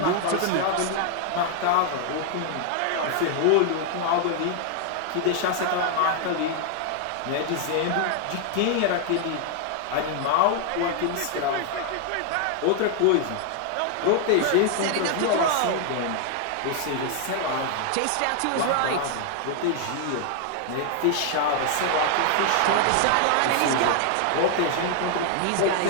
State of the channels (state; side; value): different; both; correlation 0.00